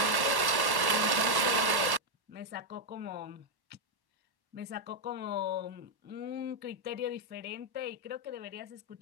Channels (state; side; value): late; left; 1.1 ms